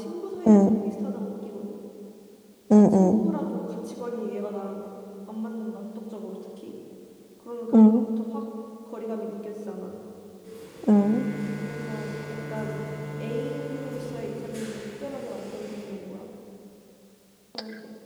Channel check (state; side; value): identical; both; correlation 1.00